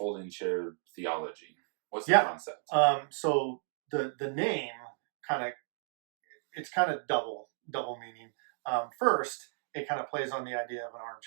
chair theology? What's the concept? So the name it's kind of double meaning. First, it kind of plays on the idea of an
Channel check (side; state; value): left; silent; digital silence